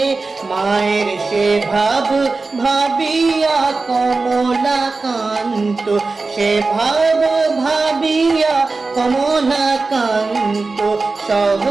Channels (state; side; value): quieter; left; 3.8 dB